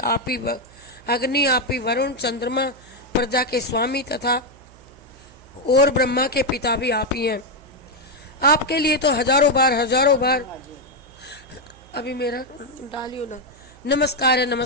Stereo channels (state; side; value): noise; right; hum, 25 dB below the sound